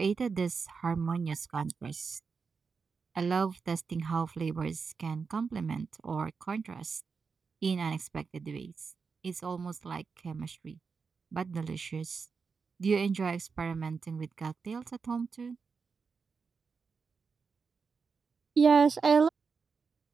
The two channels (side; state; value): left; quieter; 5.2 dB